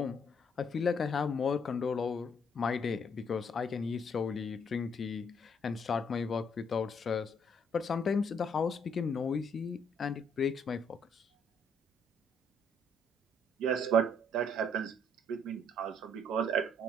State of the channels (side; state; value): both; normal; correlation 0.69